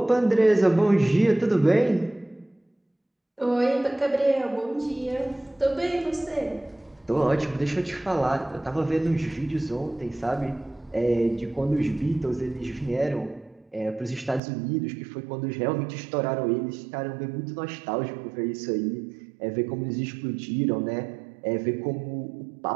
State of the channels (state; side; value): drops out; left; at 14.4 s